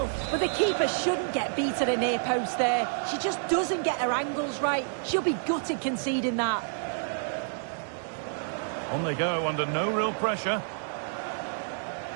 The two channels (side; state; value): left; silent; digital silence